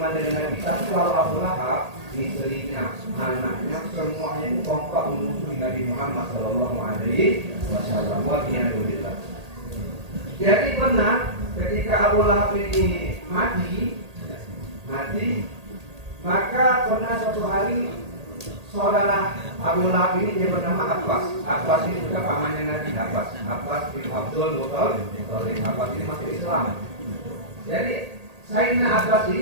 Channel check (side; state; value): left; late; 1.8 ms